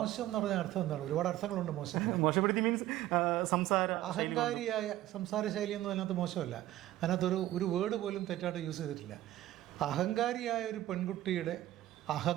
എന്ന് പറഞ്ഞ അർത്ഥം എന്താണ്? ഒരുപാട് അർത്ഥങ്ങളുണ്ട് മോശം. മോശപ്പെടുത്തി മീൻസ് അഹങ്കാരിയായ സംസാര ശൈലിയൊന്നും അതിനകത്ത് മോശമല്ല. അതിനകത്തൊരു വേർഡ് പോലും തെറ്റായിട്ട് യൂസ് ചെയ്തിട്ടില്ല. അഹങ്കാരിയായ ഒരു പെൺകുട്ടിയുടെ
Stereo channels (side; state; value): left; quieter; 14.5 dB